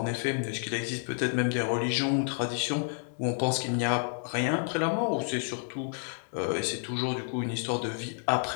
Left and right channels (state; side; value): silent; right; 58 dB below the other